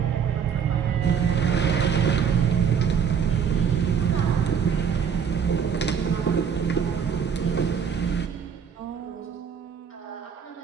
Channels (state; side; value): quieter; left; 7.2 dB